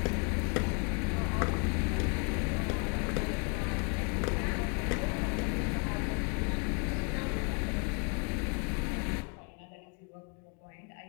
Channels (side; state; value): right; quieter; 34.9 dB